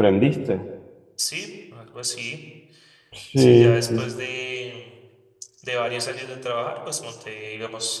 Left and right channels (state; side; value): identical; both; correlation 1.00